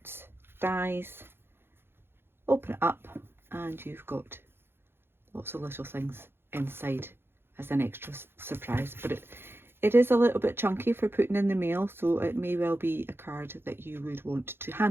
dies. Open it up and you've got lots of little things inside as an extra surprise, but it is a little bit chunky for putting in the mail, so it may well be a card that you would want to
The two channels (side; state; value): left; late; 0.11 ms